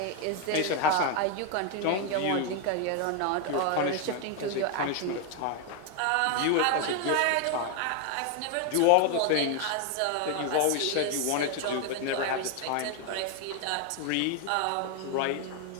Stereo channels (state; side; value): different; both; correlation 0.01